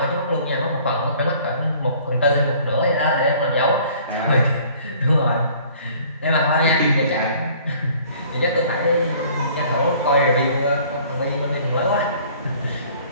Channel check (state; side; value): inverted; both; correlation -0.53